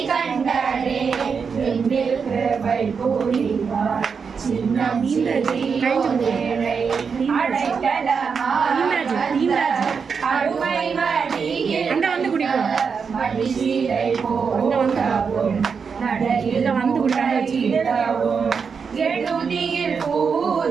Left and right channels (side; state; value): left; quieter; 5.9 dB